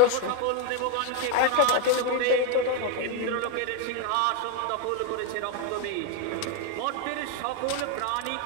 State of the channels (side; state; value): both; different; correlation 0.01